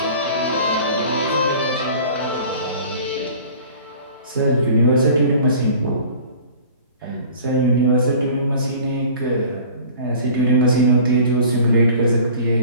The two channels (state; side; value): inverted; both; correlation -0.45